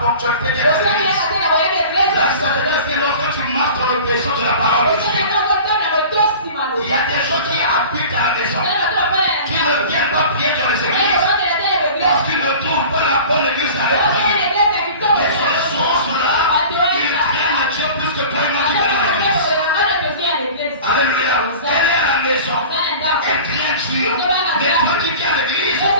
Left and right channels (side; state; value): both; inverted; correlation -0.39